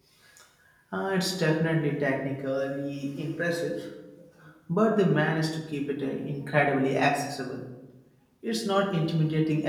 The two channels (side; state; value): both; identical; correlation 1.00